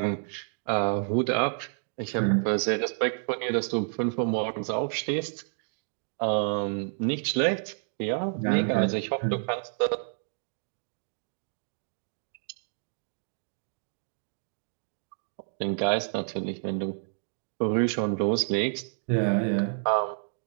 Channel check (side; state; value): left; silent; digital silence